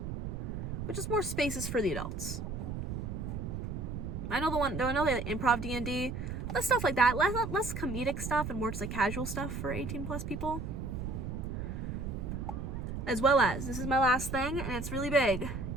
But just more spaces for the adults. I know the improv D&D, less stuff like that. Less comedic stuff and more just like casual stuff for 18 plus people. As well as, this is my last thing, and it's really big.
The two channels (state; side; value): noise; right; rumble, 5 dB below the sound